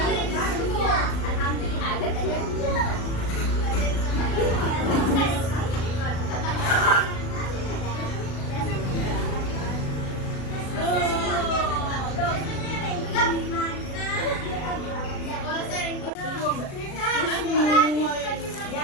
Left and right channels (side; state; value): right; late; 37 ms